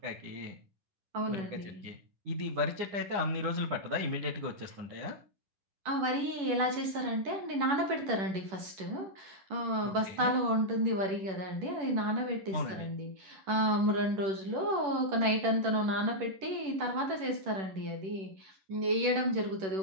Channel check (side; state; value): left; late; 10 ms